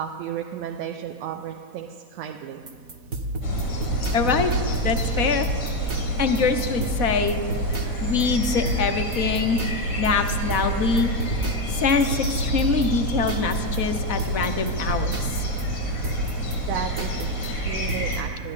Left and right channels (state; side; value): late; left; 4.1 ms